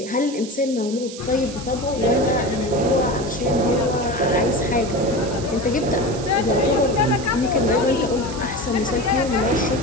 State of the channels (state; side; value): noise; right; hiss, 14 dB below the sound